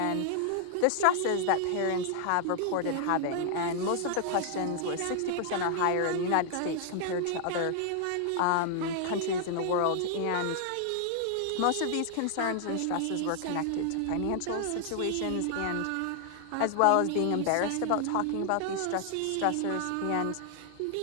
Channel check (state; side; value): different; both; correlation 0.00